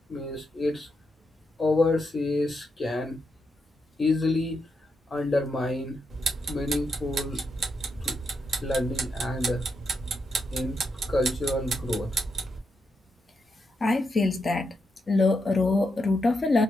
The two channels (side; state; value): both; normal; correlation 0.83